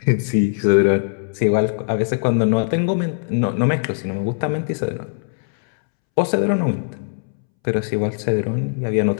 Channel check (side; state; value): right; silent; 66 dB below the other